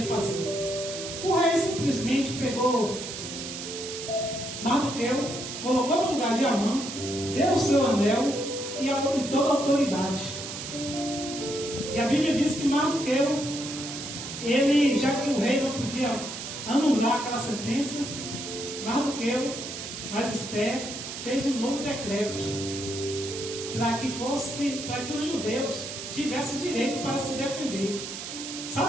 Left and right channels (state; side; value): noise; right; hiss, 8 dB below the sound